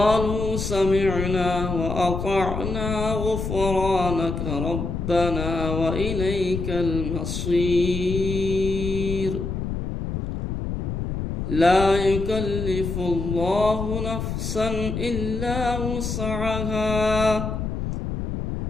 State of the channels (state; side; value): noise; left; rumble, 3 dB below the sound